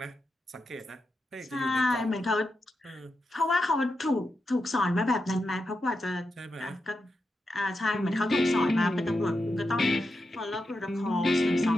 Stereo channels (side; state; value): both; normal; correlation 0.87